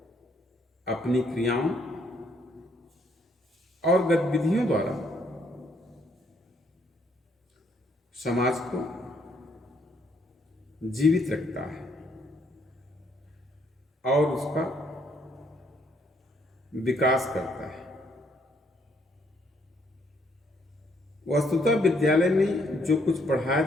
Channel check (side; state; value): both; normal; correlation 0.70